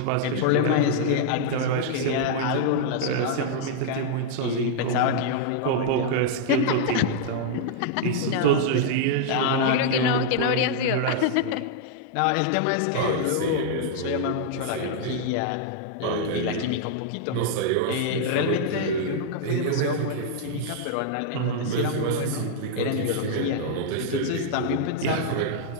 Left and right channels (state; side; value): different; both; correlation -0.01